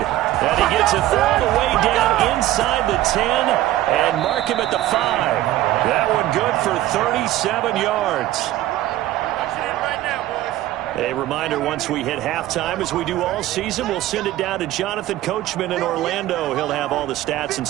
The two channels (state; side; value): quieter; left; 14.7 dB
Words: And he gets it all the way down inside the 10 and mark him at the 5. That one good for 37 yards. A reminder, once we hit halftime, as we do all season, we'll send it down to Jonathan Coachman in Orlando. He'll have all the stats and